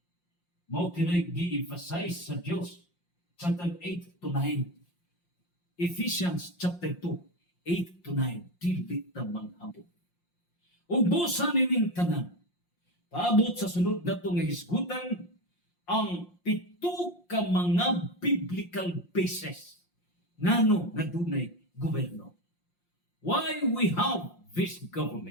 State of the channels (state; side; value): late; right; 5.7 ms